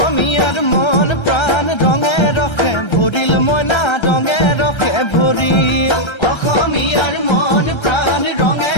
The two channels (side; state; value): right; late; 1.3 ms